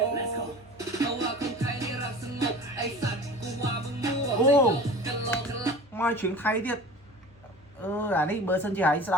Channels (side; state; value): both; normal; correlation 0.39